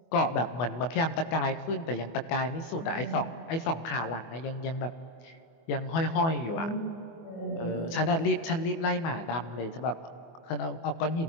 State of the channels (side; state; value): right; late; 24 ms